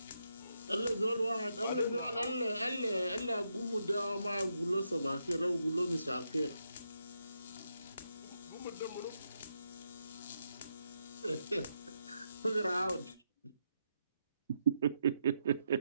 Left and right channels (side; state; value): both; inverted; correlation -0.82